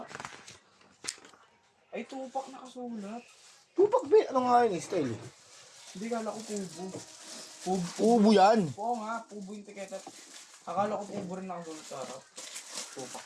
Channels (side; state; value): both; identical; correlation 1.00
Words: Ay, tupak nakasulat. Tupak ba? Ano nga yun? Style. Hindi, kala ko pubo. Ubo yan. Oo nga, pubo yung tiketa. Akala ko pubo rin nakasulat sa harap. Tupak